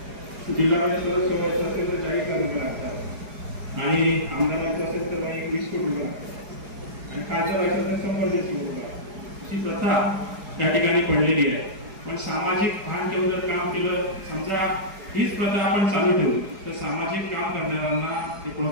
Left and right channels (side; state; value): left; late; 4.8 ms